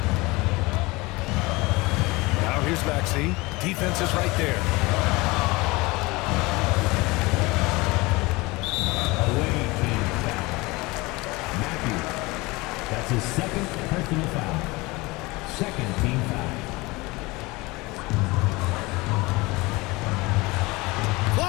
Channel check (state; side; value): quieter; right; 23.1 dB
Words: Now here's Maxey. Defense is right there. Away team foul. Matthews. That's his second personal foul. Second team foul.